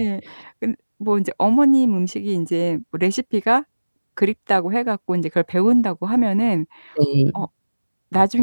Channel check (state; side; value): inverted; both; correlation -1.00